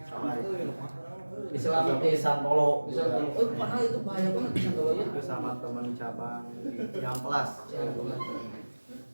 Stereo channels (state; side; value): inverted; both; correlation -1.00